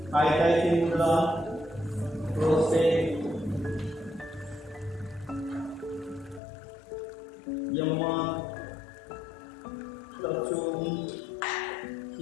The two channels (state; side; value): drops out; right; at 6.4 s